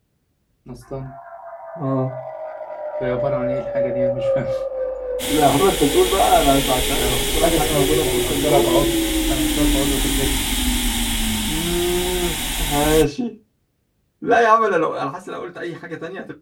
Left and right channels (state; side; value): identical; both; correlation 1.00